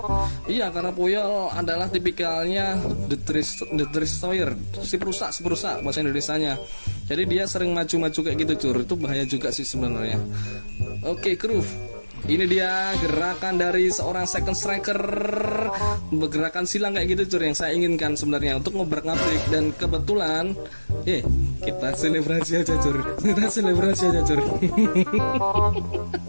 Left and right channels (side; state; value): both; inverted; correlation -1.00